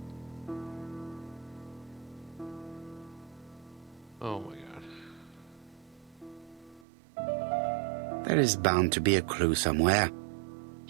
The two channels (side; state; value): left; drops out; at 6.9 s